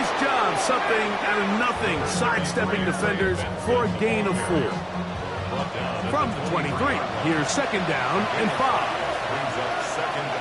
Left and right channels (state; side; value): identical; both; correlation 1.00